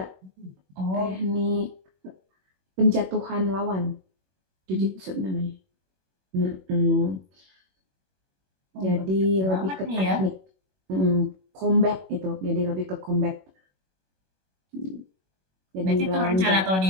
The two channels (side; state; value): left; late; 21 ms